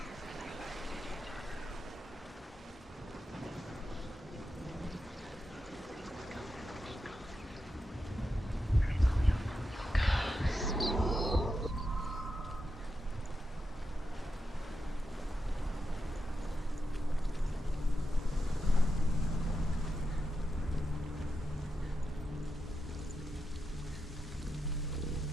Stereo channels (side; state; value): both; normal; correlation 0.88